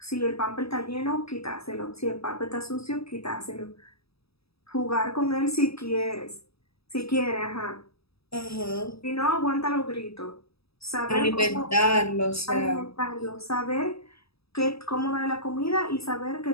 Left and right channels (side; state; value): right; late; 0.77 ms